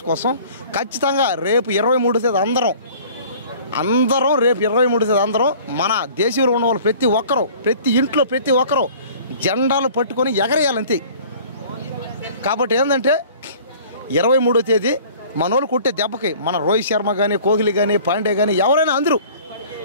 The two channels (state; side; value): inverted; both; correlation -0.48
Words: కోసం. ఖచ్చితంగా రేపు 23వ తేదీ అందరం రేపు 23వ తేదీ అందరం మన దేశంలో ఉన్న వాళ్ళు ప్రతి ఒక్కరూ, ప్రతి ఇంట్లో ప్రతి ఒక్కరూ జెండాలు పట్టుకొని ఎగరేయాలంతే. కాబట్టి ఏంటంటే 23వ తేదీ మనోళ్ళు కొట్టే దెబ్బకి మన రోహిత్ శర్మ కానీ, కోహ్లీ కానీ, పాండే కానీ ఎవరైనా అందరూ